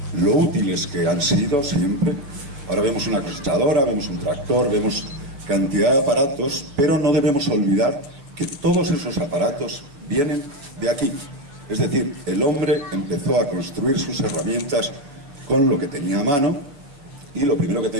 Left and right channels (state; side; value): late; left; 7.0 ms